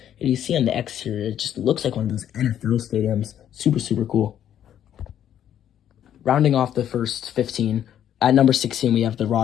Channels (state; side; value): quieter; right; 10.3 dB